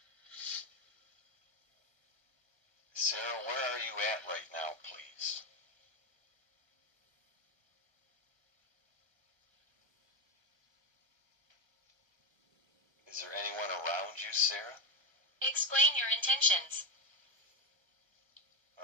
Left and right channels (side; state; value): left; late; 1.5 ms